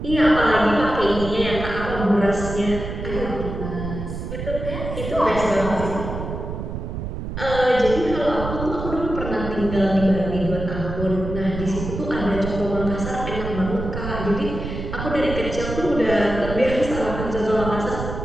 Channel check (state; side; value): noise; right; rumble, 6 dB below the sound